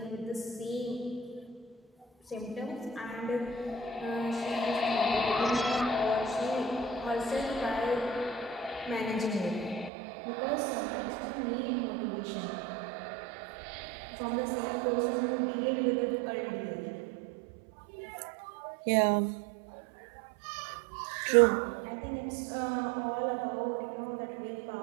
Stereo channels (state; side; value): drops out; left; at 9.9 s